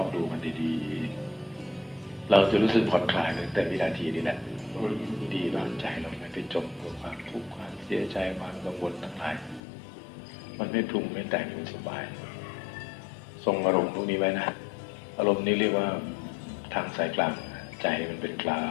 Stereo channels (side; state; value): right; drops out; at 9.6 s